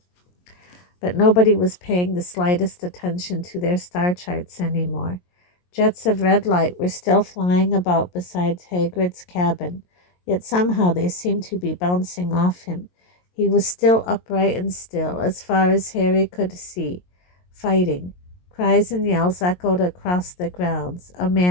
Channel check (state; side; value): late; right; 22 ms